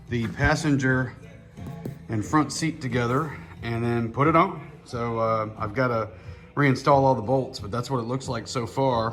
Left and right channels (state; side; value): identical; both; correlation 1.00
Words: the passenger and front seat together and then put it on. So I've got to reinstall all the bolts, but that's what it looks like so